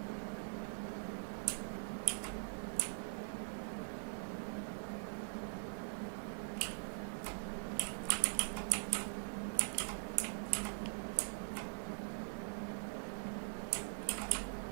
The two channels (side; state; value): left; silent; digital silence